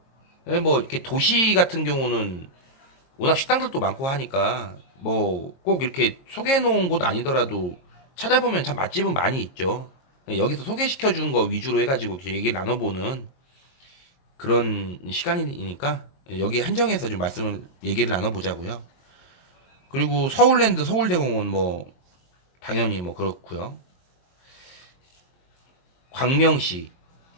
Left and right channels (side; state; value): right; late; 22 ms